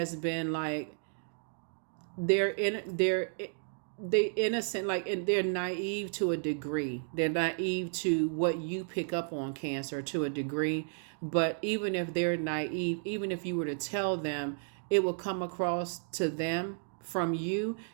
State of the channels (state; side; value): silent; left; digital silence